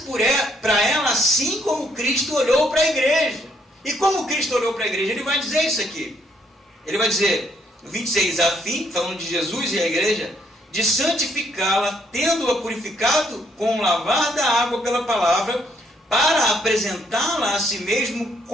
para ela assim como Cristo olhou para a igreja. E como Cristo olhou para a igreja? Ele vai dizer isso aqui. Ele vai dizer, no 26, a fim, falando de Jesus e a igreja, de santificá-la, tendo-a purificado com o lavar da água pela palavra, para apresentá-la a si mesmo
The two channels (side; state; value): both; normal; correlation 0.70